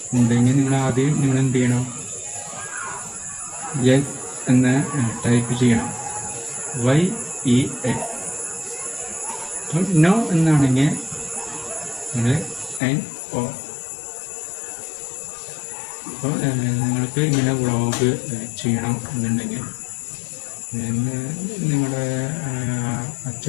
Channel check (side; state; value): right; drops out; at 12.8 s